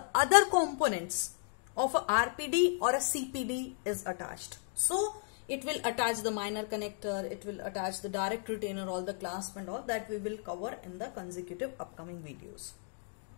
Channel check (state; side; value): silent; right; 55 dB below the other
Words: other components of a RPD or a CPD is attached. So it will attach the minor connector, it will attach the direct retainer, all the clasp and all that we will cover in the consecutive upcoming videos.